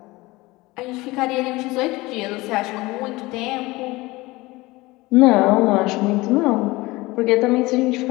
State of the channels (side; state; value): right; quieter; 21.1 dB